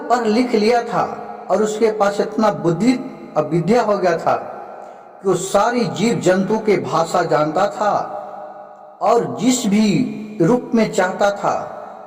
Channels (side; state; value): both; identical; correlation 1.00